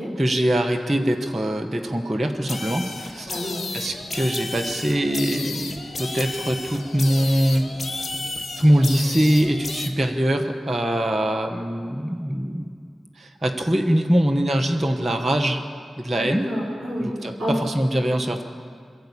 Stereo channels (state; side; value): normal; both; correlation 0.96